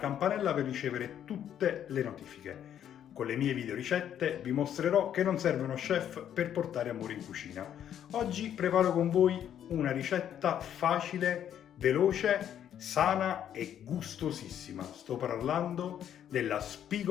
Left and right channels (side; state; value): right; quieter; 9.9 dB